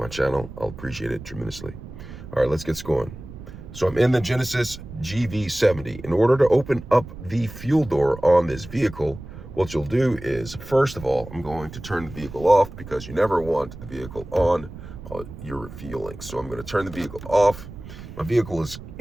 channel? I'll appreciate it tremendously. All right, let's get going. So I'm in the Genesis GV70. In order to open up the fuel door on this vehicle, what you'll do is, first of all, I'm going to turn the vehicle off because you never want the vehicle on while you're refueling. So I'm going to turn the vehicle off. My vehicle is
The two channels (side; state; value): right; noise; rumble, 14 dB below the sound